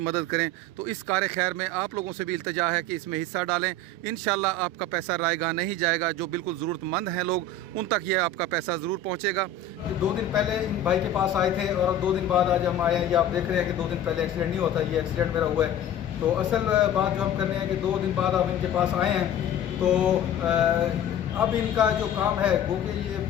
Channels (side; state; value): right; quieter; 3.3 dB